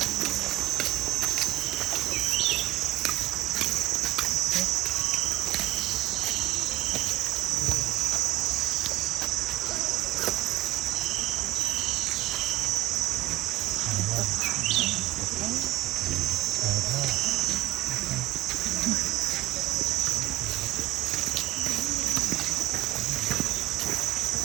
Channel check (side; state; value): left; quieter; 16.2 dB